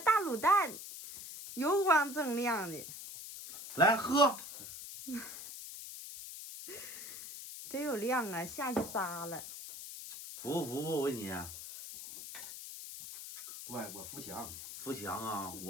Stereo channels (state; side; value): noise; left; hiss, 11 dB below the sound